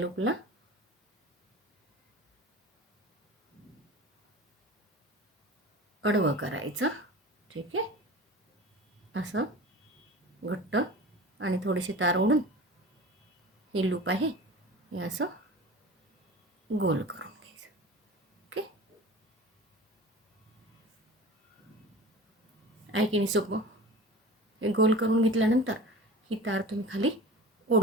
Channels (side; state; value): both; normal; correlation 0.37